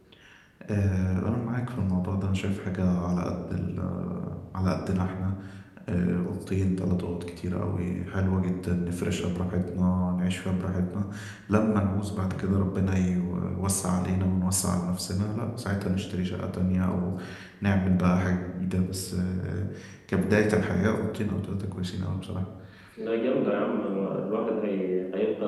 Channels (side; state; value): both; identical; correlation 1.00